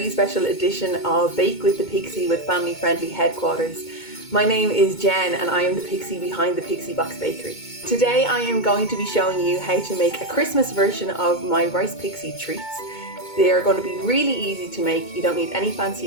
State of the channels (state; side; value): late; right; 2.2 ms